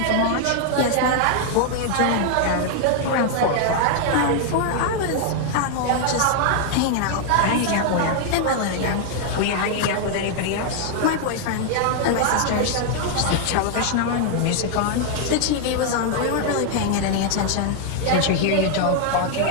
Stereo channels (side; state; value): both; different; correlation 0.00